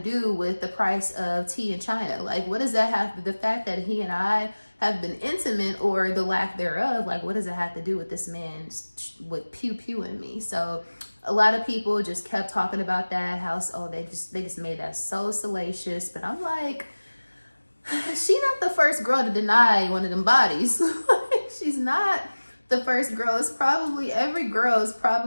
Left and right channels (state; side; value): inverted; both; correlation -1.00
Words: with the price of tea in China? Like, what does that have to, the fact that he and I have been intimate, or the lack thereof, like, what does it have to do with this man with pew-pewing me? So a lot of people just kept talking about that, how, they just made that so salacious. But I'm like, she not the first girl to deny one of them bodies. She's not the first girl. It's probably, every girl is